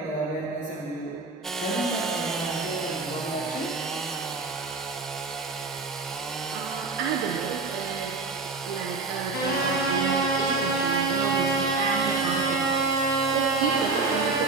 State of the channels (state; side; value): quieter; left; 3.8 dB